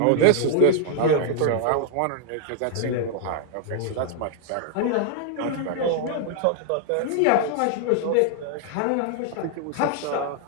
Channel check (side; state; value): both; different; correlation 0.00